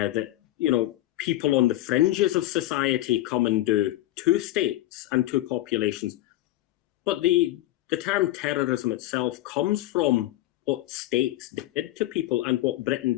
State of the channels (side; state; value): right; quieter; 15.8 dB